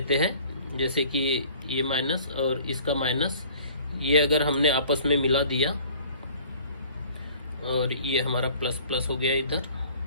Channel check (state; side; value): inverted; both; correlation -0.51